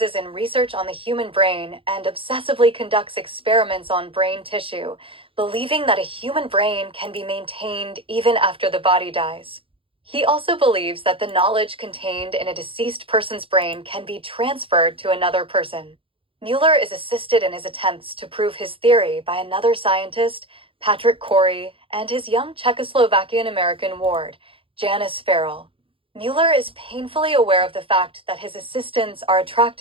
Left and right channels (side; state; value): left; late; 0.26 ms